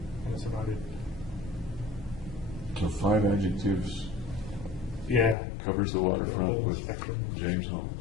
That's about it. So 5 adjectives Yeah. covers the waterfront Whole with spectrum. James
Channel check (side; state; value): right; drops out; at 5.4 s